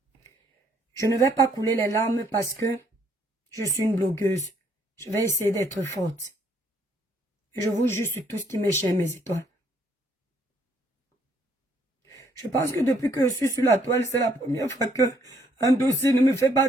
Je ne vais pas couler les larmes parce que je suis une blogueuse. Je vais essayer d'être forte. Et je vous jure sur tout ce qui m'est cher, mes étoiles. Je pense que depuis que je suis sur la toile, c'est la première fois que un dossier ne me fait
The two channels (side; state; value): both; normal; correlation 0.68